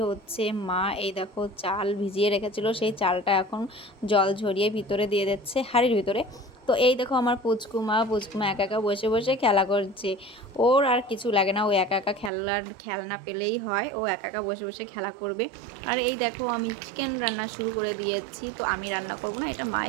হচ্ছে মা। এই দেখো চাল ভিজিয়ে রেখেছিল, সেই চালটা এখন জল ঝরিয়ে ভিতরে দিয়ে দিচ্ছে হাঁড়ির ভিতরে। তো এই দেখো আমার পুচকুমা একা একা বসে বসে খেলা করছে। ওর আর কিছু লাগে না, ও একা একা খেলনা পেলেই হয়, ও একা একা বসে বসে খেলা করবে। আর এই দেখো আমি চিকেন রান্না শুরু করে দিয়েছি। তো আমি রান্না করব না, এটা মাই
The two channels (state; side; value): drops out; left; at 12.3 s